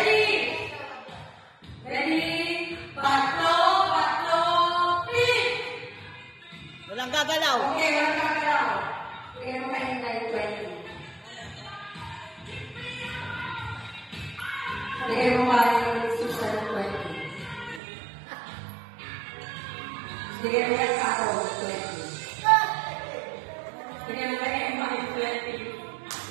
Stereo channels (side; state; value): left; drops out; at 17.8 s